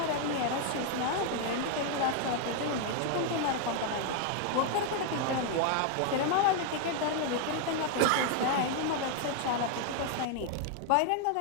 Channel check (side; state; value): both; different; correlation 0.00